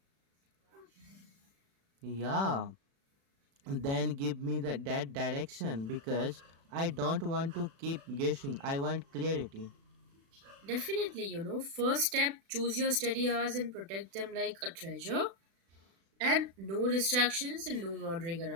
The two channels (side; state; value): left; late; 36 ms